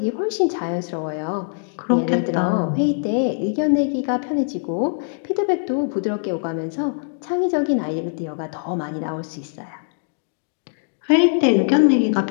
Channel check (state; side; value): silent; right; digital silence